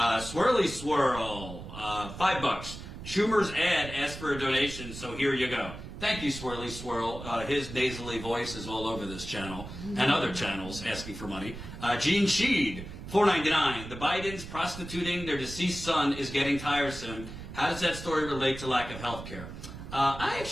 Swirl, $5. Schumer's ad asked for a donation, so here you go. Thank you, Swirly Swirl. His nasally voice is all over this channel and other channels asking for money. Gene Sheed, $4.99. The Bidens prostituting their deceased son is getting tiresome. How does that story relate to lack of health care? I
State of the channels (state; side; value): noise; right; rumble, 11 dB below the sound